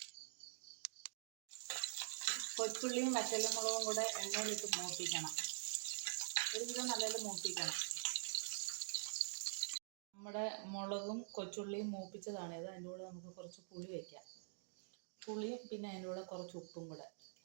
കൊച്ചുള്ളിയും വറ്റൽമുളകും കൂടെ എണ്ണയിലിട്ട് മൂപ്പിക്കണം. ഒരുവിധം നല്ലത് മൂപ്പിക്കണം. നമ്മുടെ മുളകും കൊച്ചുള്ളിയും മൂപ്പിച്ചതാണിത്. അതിൻ്റെ കൂടെ നമുക്ക് കുറച്ച് പുളി വയ്ക്കാം. പുളിയും പിന്നെ അതിൻ്റെ കൂടെ കുറച്ച് ഉപ്പും കൂടെ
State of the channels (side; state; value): left; silent; digital silence